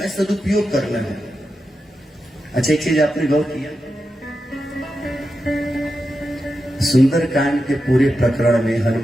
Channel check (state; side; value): normal; both; correlation 0.89